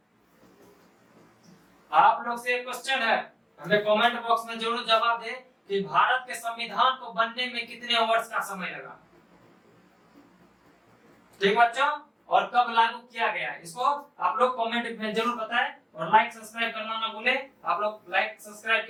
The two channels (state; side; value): identical; both; correlation 1.00